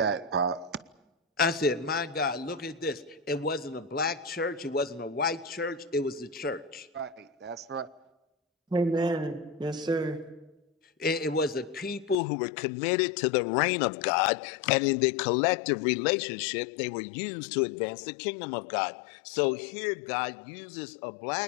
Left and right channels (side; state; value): right; drops out; at 12.2 s